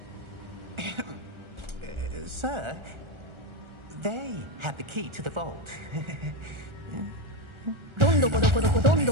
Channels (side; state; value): left; late; 1.4 ms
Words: Sir, they have the key to the vault. どんどこどこどこどん